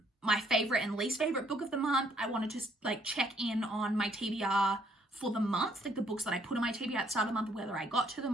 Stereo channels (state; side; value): normal; both; correlation 0.66